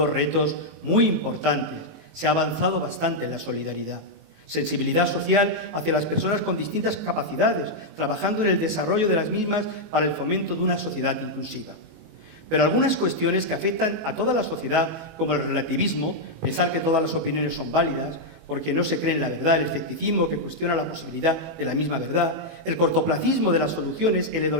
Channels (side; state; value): left; late; 19 ms